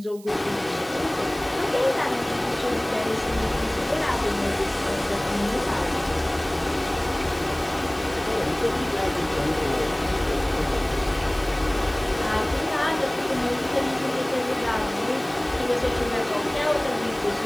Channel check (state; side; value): noise; right; hiss, 22 dB below the sound